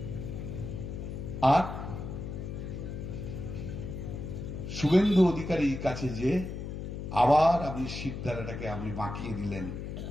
আর শুভেন্দু অধিকারীর কাছে যে আবার আপনি সিদ্ধারাটাকে আপনি বাঁকিয়ে দিলেন,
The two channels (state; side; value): noise; left; hum, 6 dB below the sound